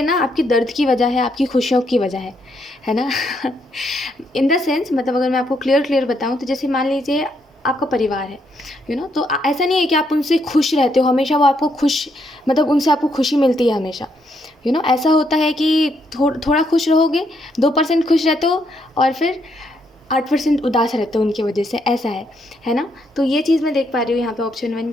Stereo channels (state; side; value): normal; both; correlation 0.75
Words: ना आपकी दर्द की वजह है, आपकी खुशियों की वजह है ना. इन द सेंस, मतलब अगर मैं आपको क्लियर बताऊँ तो जैसे मान लीजिए आपका परिवार है, तो ऐसा नहीं है कि आप उनसे खुश रहते हो हमेशा, वो आपको खुश, मतलब उनसे आपको खुशी मिलती है हमेशा. ऐसा होता है कि थोड़ा खुश रहोगे, 2% खुश रहते हो, और फिर 8% उदास रहते हो उनकी वजह से, ऐसा है ना. तो ये चीज़ मैं देख पा रही हूँ यहाँ पे ऑप्शन 1